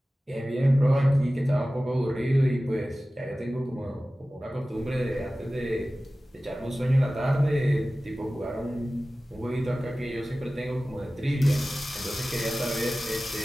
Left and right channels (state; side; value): normal; both; correlation 0.96